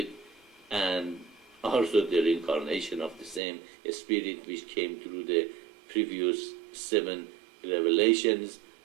and also the reincarnation of the same spirit which came through the previous 7 revelations,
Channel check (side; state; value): left; drops out; at 3.4 s